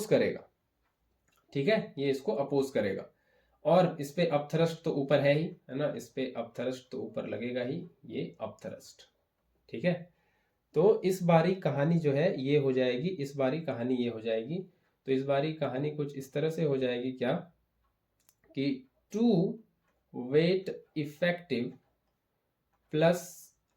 करेगा, ठीक है, ये इसको अपोज करेगा। और इस पे अपथ्रस्ट तो ऊपर है ही, है ना, इस पे अपथ्रस्ट तो ऊपर लगेगा ही, ये अपथ्रस्ट, ठीक है। तो इस बारी कहानी जो है ये हो जाएगी, इस बारी कहानी ये हो जाएगी। तो इस बारी कहानी कुछ इस तरह से हो जाएगी, क्या, कि 2 weight effective plus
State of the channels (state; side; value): identical; both; correlation 1.00